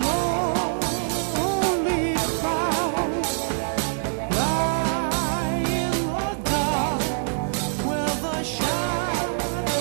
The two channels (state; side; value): silent; left; digital silence